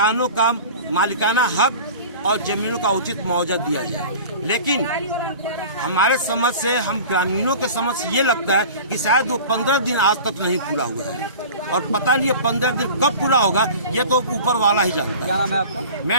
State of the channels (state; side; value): inverted; both; correlation -0.39